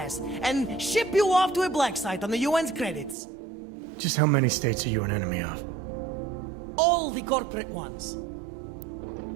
and ship you off to a black site on the UN's credits. Just how many states are you an enemy of? All the corporate ones.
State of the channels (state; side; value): drops out; left; at 3.2 s